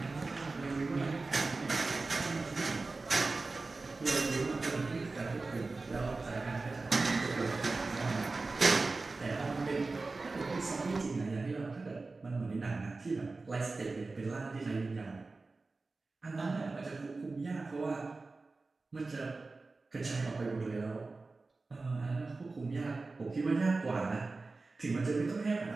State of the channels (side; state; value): left; quieter; 3.6 dB